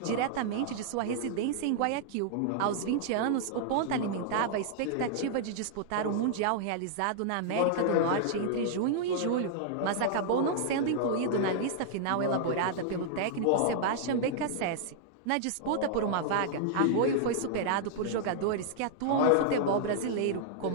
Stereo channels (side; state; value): both; different; correlation -0.01